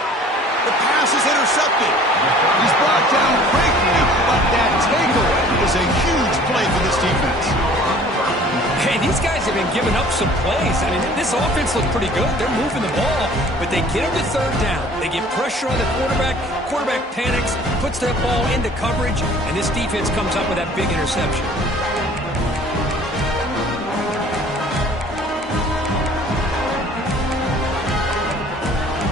The pass is intercepted. He's brought down quickly, but that takeaway is a huge play for this defense. Hey, these guys have been giving up some plays. I mean, this offense looked pretty good. They're moving the ball, but they get him to third down. They get pressure on the quarterback. Quarterback panics, puts that ball into coverage, and this defense comes up with that big interception.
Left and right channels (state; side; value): normal; both; correlation 0.51